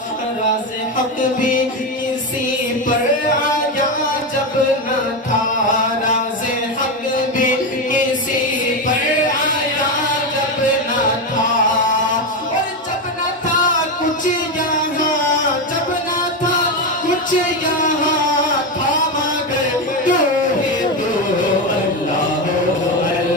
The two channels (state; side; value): normal; both; correlation 0.13